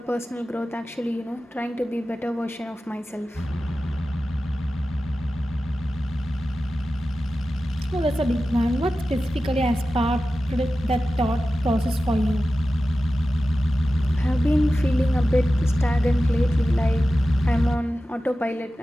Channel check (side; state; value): both; normal; correlation 0.94